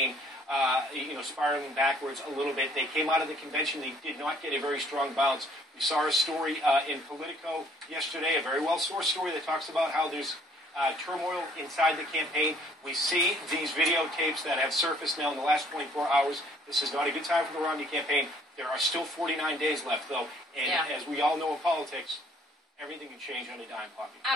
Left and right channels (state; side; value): normal; both; correlation 0.60